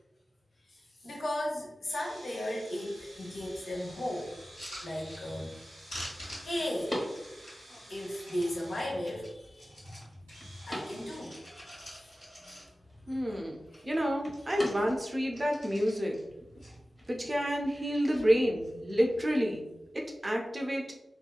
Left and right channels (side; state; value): both; normal; correlation 0.96